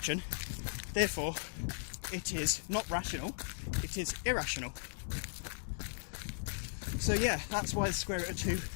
Therefore, it is not rational, it is irrational. So yeah, that's why the square root of 2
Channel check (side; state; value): right; silent; digital silence